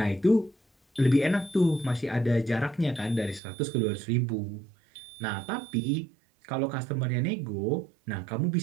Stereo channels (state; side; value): drops out; left; at 3.4 s